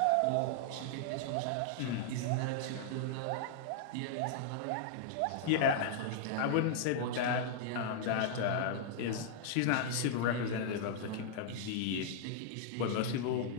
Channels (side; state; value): both; different; correlation -0.01